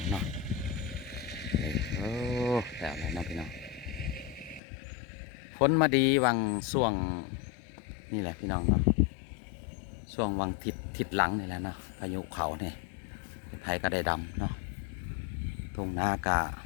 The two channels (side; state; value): right; drops out; at 4.6 s